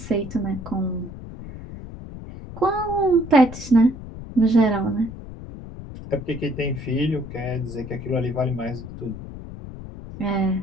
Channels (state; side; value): noise; left; rumble, 12 dB below the sound